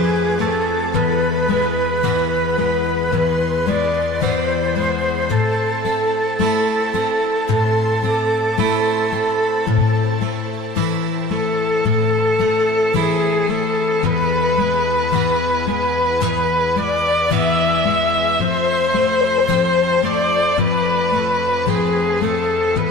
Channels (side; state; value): both; normal; correlation 0.49